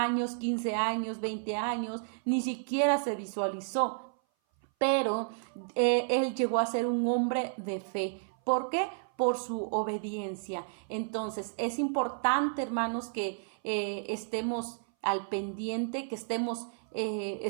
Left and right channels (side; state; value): left; silent; 57 dB below the other